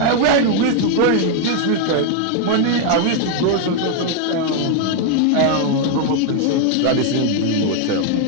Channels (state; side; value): different; both; correlation 0.00